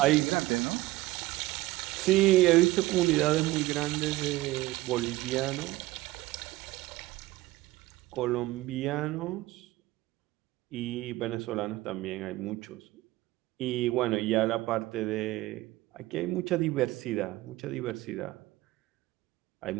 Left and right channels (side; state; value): left; quieter; 18.1 dB